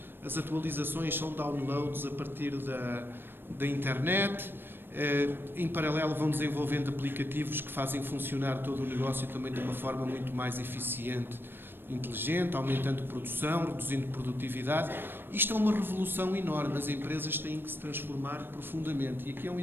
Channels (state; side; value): late; left; 0.099 ms